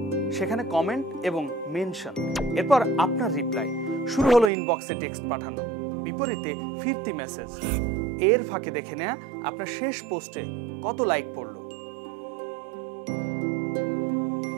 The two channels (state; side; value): drops out; left; at 4.5 s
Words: সেখানে কমেন্ট এবং মেনশন, এরপর আপনার রিপ্লাই। শুরু হলো ইনবক্সে টেক্সট পাঠানো, বিপরীতে ফিরতি মেসেজ। এর ফাঁকে দেখে নেয়া আপনার শেষ পোস্টে কত লাইক পড়ল।